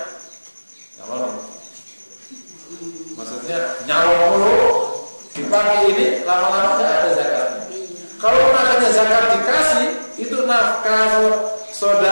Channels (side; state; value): both; inverted; correlation -1.00